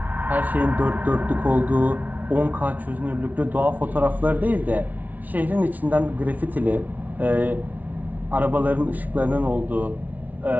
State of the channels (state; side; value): late; left; 0.076 ms